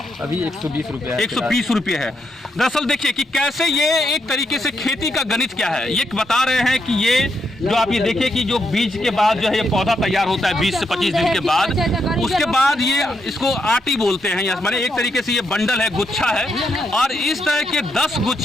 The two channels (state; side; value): normal; both; correlation 0.80